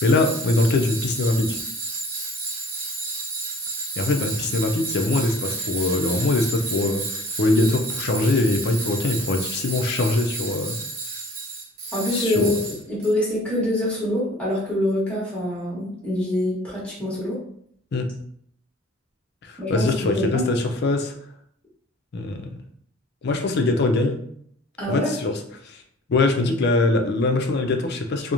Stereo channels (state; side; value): normal; both; correlation 0.49